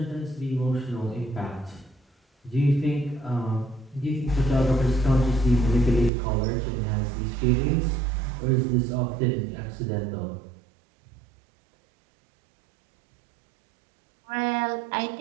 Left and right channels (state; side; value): drops out; left; at 6.1 s